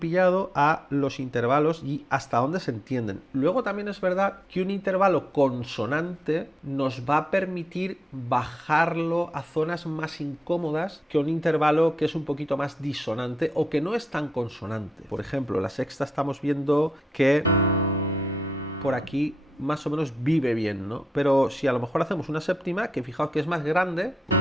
a los intervalos y hasta dónde se entienden. Luego también es verdad que un intervalo consonante nos va a permitir bajarlo a zonas más incómodas que un intervalo que es un poquito más disonante o que no es tan consonante. Por ejemplo, la sexta estamos viendo que por aquí más o menos vive bien, ¿no? Pero si a lo mejor hacemos una séptima, que fijaos que es más grande,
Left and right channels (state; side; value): normal; both; correlation 0.85